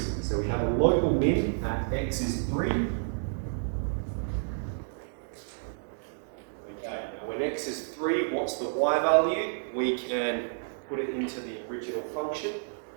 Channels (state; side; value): silent; left; digital silence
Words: So we have a local min at x is 3. Okay, now when x is 3, what's the y value? We can put it into the original function,